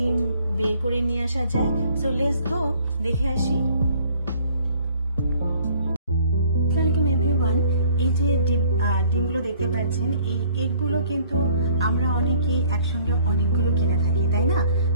বের করে নিয়ে আসা যায়। সো লেটস গো, দেখে আসি। Welcome everyone. এই যে ডিমগুলো দেখতে পাচ্ছেন, এই এগগুলো কিন্তু আমরা অনেকেই একসঙ্গে অনেকগুলো কিনে থাকি, তাই না?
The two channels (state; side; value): inverted; both; correlation -0.58